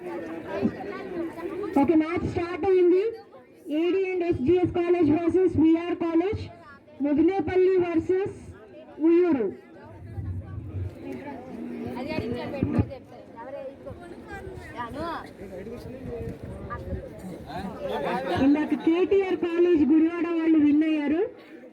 ఓకే, మ్యాచ్ స్టార్ట్ అయింది. AD and SGS college versus VR college, Mudinepalli versus Uyyuru. ఇందాక కేటీఆర్ కాలేజ్ గుడివాడ వాళ్ళు విన్ అయ్యారు.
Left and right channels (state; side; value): identical; both; correlation 1.00